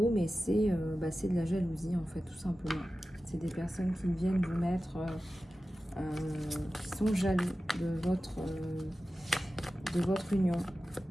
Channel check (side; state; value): both; normal; correlation 0.95